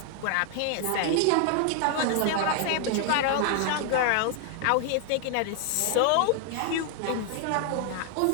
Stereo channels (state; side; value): different; both; correlation 0.00